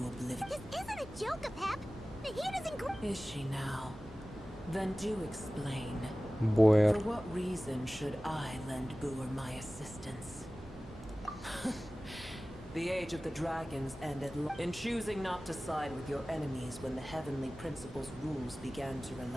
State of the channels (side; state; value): right; noise; hum, 20 dB below the sound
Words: This isn't a joke, Apep. Nahida's in... Is she now? Then do explain. Boyer. For what reason should I lend Boer my assistance? The age of the dragons ended in choosing not to side with your enemies when the heavenly principles' rules began to